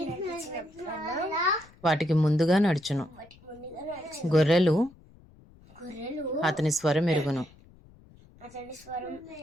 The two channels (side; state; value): left; noise; rumble, 25 dB below the sound